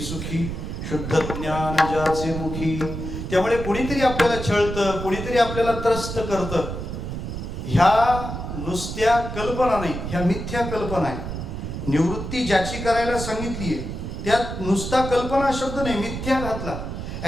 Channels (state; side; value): noise; right; rumble, 6 dB below the sound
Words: शुद्ध ज्ञान ज्याचे मुखी. त्यामुळे कोणीतरी आपल्याला छळतं कुणीतरी आपल्याला त्रस्त करतं. ह्या नुसत्या कल्पना नाही, ह्या मिथ्या कल्पना आहे. निवृत्ती ज्याची करायला सांगितलीये त्यात नुसता कल्पना शब्द नाही मिथ्या घातला.